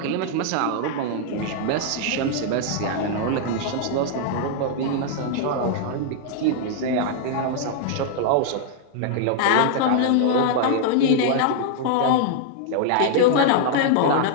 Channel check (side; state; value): both; different; correlation -0.01